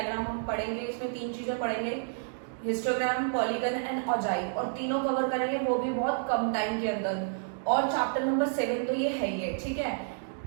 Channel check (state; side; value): silent; left; digital silence